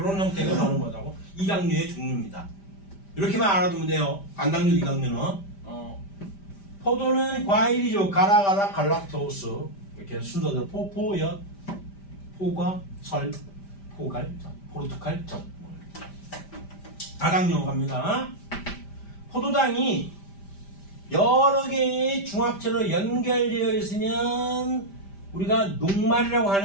형태가 바로 뭐라고? 이당류의 종류입니다. 이렇게만 알아두면 돼요. 단당류, 이당류는. 포도는 과일이죠. 가라가라 갈락토스 이렇게 순서대로 포포엿, 포과, 설, 포갈, 포르투갈, 젖. 다당류 갑니다. 포도당이 여러 개의 중합체로 연결되어 있으면 우리가 녹말이라고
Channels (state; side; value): late; right; 5.1 ms